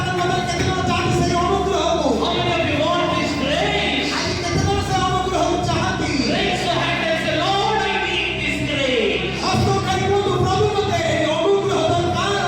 ମଧ୍ୟରେ କେତେ ଜଣ ଚାହାନ୍ତି ସେହି ଅନୁଗ୍ରହକୁ? How many of you want this grace? ଆଜି କେତେ ଜଣ ସେ ଅନୁଗ୍ରହକୁ ଚାହାନ୍ତି? Raise your hand and say, Lord, I need this grace. ହସ୍ତ ଉଠାଇ କୁହନ୍ତୁ, ପ୍ରଭୁ ମୋତେ ଏହି ଅନୁଗ୍ରହ ଦରକାର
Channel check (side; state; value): both; identical; correlation 1.00